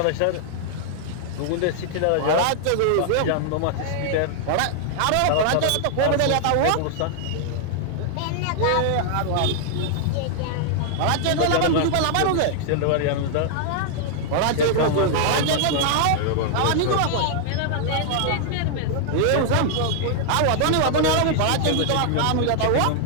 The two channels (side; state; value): both; different; correlation -0.01